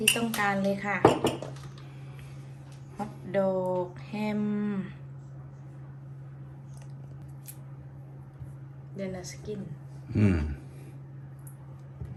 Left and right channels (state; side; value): identical; both; correlation 1.00